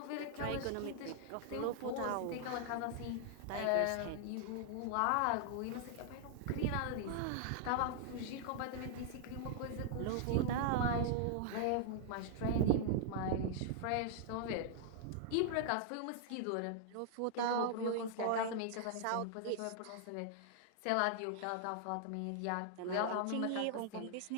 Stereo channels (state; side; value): different; both; correlation -0.01